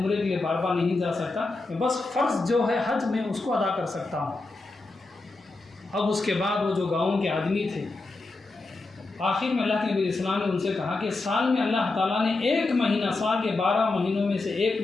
के लिए बार बार नहीं जा सकता, मैं बस फ़र्ज़ जो है हज में उसको अदा कर सकता हूँ। अब उसके बाद वो जो गाँव के आदमी थे, आखिर में अल्लाह के नबी इस्लाम ने उनसे कहा कि साल में अल्लाह ताला ने 1 महीना, साल के 12 महीनों में से 1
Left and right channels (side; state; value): right; quieter; 3.4 dB